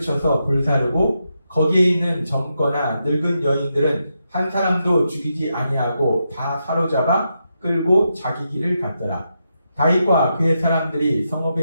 불사르고 거기에 있는 젊거나 늙은 여인들은 한 사람도 죽이지 아니하고 다 사로잡아 끌고 자기 길을 갔더라. 다윗과 그의 사람들이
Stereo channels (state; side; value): inverted; both; correlation -0.84